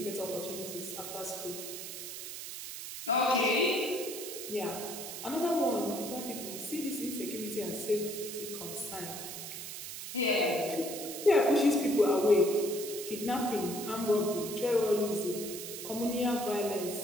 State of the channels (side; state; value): right; noise; hiss, 8 dB below the sound